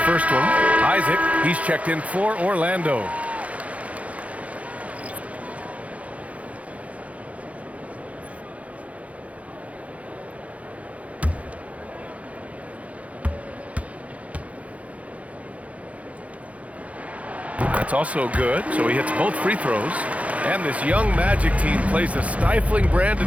one. Isaac, he's checked in for Orlando. That's also good, so he hits both free throws. And this young Magic team plays a stifling brand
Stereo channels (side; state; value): left; late; 0.066 ms